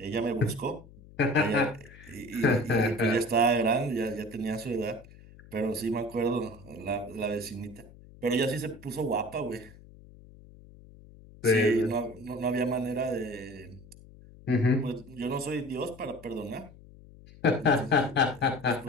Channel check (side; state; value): left; noise; hum, 21 dB below the sound